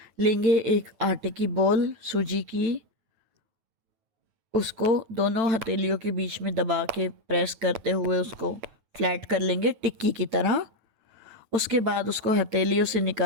लेंगे एक आटे की बॉल सूजी की, उसको दोनों हथेलियों के बीच में दबा के प्रेस करते हुए उसको फ्लैट कर लेंगे टिक्की की तरह। उसके बाद उसको हथेलियों से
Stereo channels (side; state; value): left; late; 8.9 ms